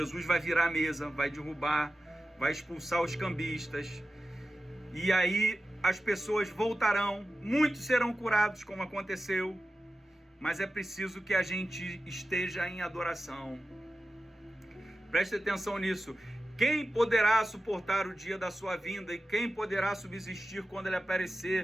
vai virar a mesa, vai derrubar, vai expulsar os cambistas. E aí as pessoas voltarão, muitos serão curados, como aconteceu. Mas é preciso que a gente esteja em adoração. Preste atenção nisso. Quem poderá suportar o dia da sua vinda? E quem poderá subsistir quando ele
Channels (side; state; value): both; normal; correlation 0.94